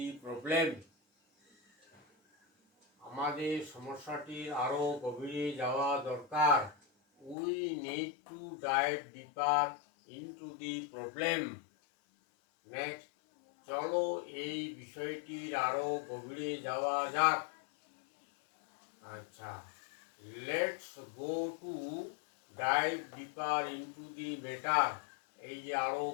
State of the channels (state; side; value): drops out; right; at 7.4 s